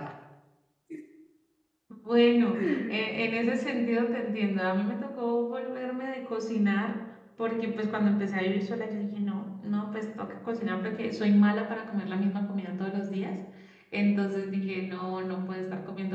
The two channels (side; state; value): both; identical; correlation 1.00